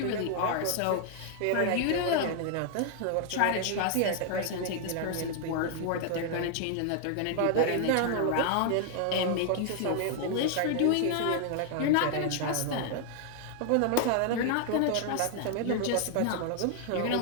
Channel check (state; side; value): different; both; correlation 0.00